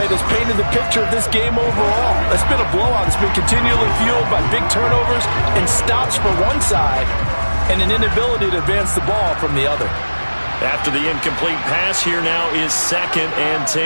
that's painted the picture of this game overall. It's been a blowout. It's been continually fueled by big turnovers and stops for one side and an inability to advance the ball from the other. After the incomplete pass, here now is 2nd and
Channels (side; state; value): both; inverted; correlation -1.00